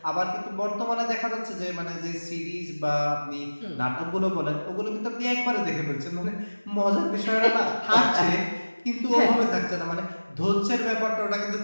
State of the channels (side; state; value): both; inverted; correlation -1.00